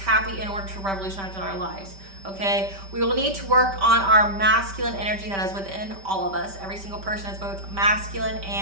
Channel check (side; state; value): left; late; 5.1 ms